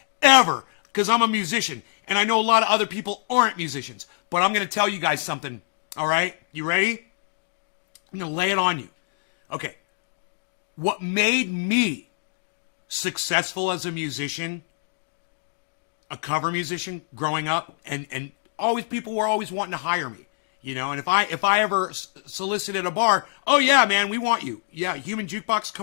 ever because I'm a musician and I know a lot of other people aren't musicians. But I'm going to tell you guys something. All right? You ready? I'm going to lay it on you. Okay. What made me successful as a musician, a cover musician growing up, and always people were always wanting to hire me. You know, and if I ever solicited a bar, oh yeah, man, we want you. Yeah, Human Jukebox,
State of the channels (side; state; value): right; silent; digital silence